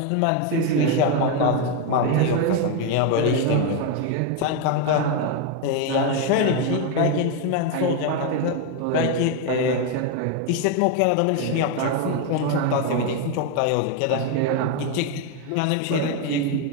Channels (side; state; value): both; different; correlation 0.02